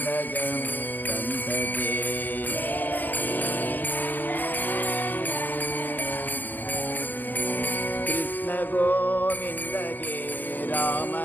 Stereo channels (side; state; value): right; late; 0.085 ms